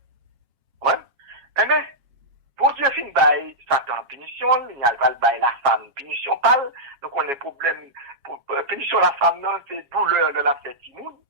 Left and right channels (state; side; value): late; left; 7.3 ms